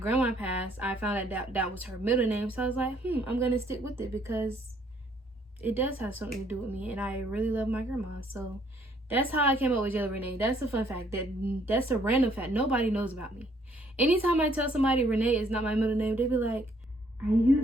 passed, I found out that was her middle name. So I was like, I'm gonna stick with it because it does have something to do with me, and I really love my grandma. So that's how I came up with Jayla Renee. That's a fun fact. That's a random fact. Nobody knows about me. Anytime I tell somebody Renee is not my middle name, they be like, "Are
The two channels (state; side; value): normal; both; correlation 0.65